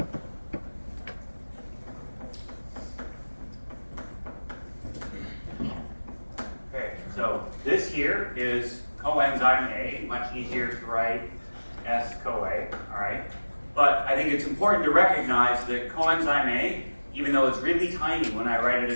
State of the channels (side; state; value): both; inverted; correlation -1.00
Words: Okay, so this here is coenzyme A, much easier to write S-CoA, all right? But I think it's important to recognize that coenzyme A, even though it's really tiny when I write it